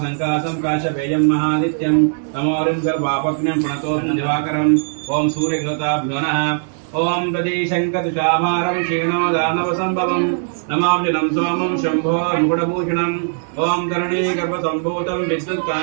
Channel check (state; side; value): silent; left; digital silence